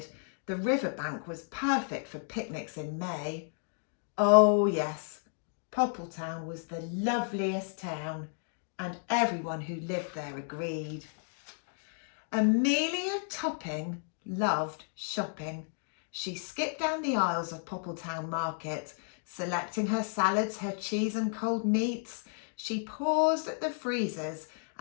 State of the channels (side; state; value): right; silent; 56 dB below the other